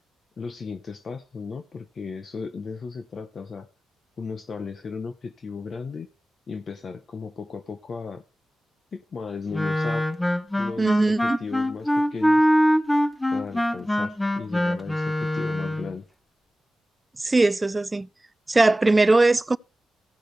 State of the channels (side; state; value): both; normal; correlation 0.96